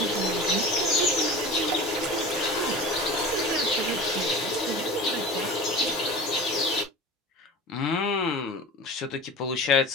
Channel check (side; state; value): both; normal; correlation 0.35